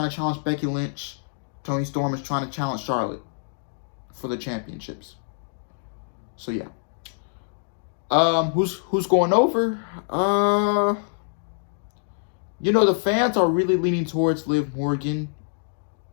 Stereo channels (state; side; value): silent; right; digital silence